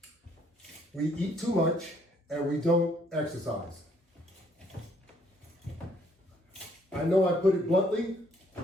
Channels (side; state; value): both; normal; correlation 0.66